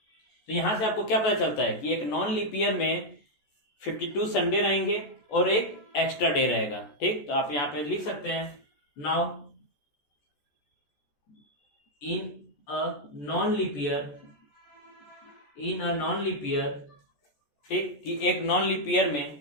तो यहां से आपको क्या पता चलता है कि एक नॉन लीप ईयर में 52 संडे रहेंगे और एक एक्स्ट्रा डे रहेगा। ठीक, तो आप यहाँ पे लिख सकते हैं now in a non leap year, ठीक, कि एक नॉन लीप ईयर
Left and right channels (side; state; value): right; late; 14 ms